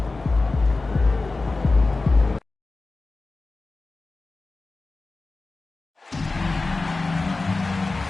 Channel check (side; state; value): right; quieter; 3.5 dB